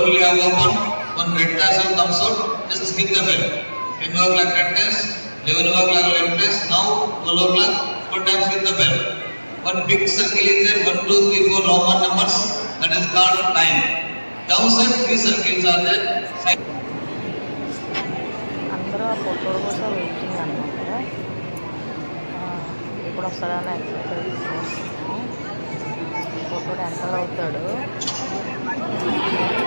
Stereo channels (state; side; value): inverted; both; correlation -1.00